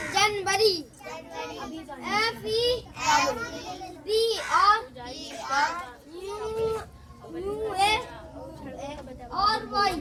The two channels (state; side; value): identical; both; correlation 1.00